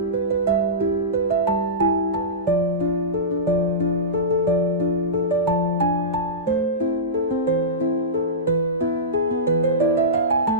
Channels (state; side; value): normal; both; correlation -0.17